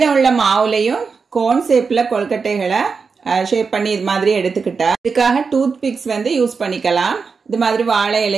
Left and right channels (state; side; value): quieter; left; 5.1 dB